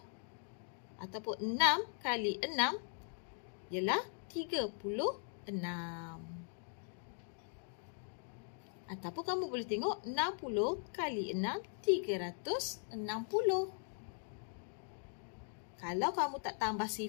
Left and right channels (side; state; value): right; silent; 51 dB below the other